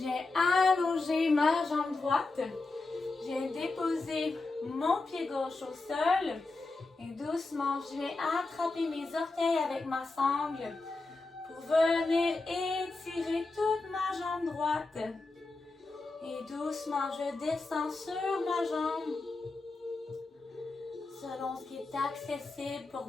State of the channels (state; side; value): quieter; right; 3.5 dB